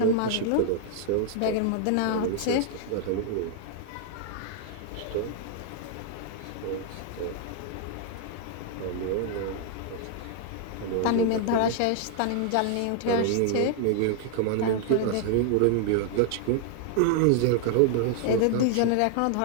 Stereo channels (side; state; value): both; different; correlation 0.00